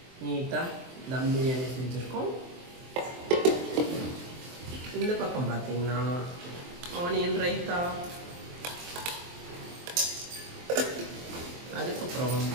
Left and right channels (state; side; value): late; left; 23 ms